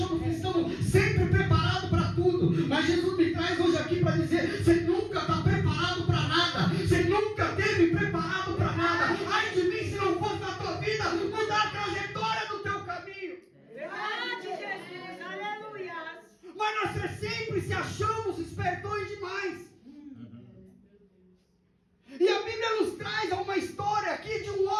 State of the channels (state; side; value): identical; both; correlation 1.00